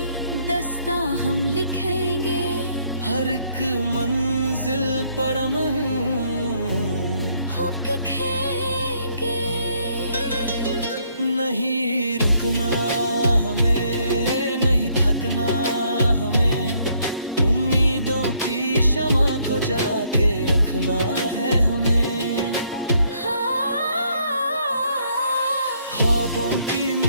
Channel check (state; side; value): inverted; both; correlation -0.69